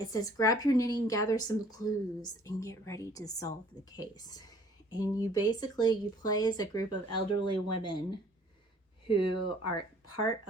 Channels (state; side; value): normal; both; correlation 0.56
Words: says, grab your knitting, gather some clues, and get ready to solve the case. And you play as a group of elderly women who are part